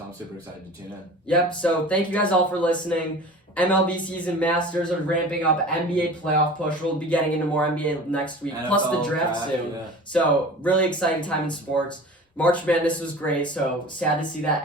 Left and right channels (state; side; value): normal; both; correlation 0.39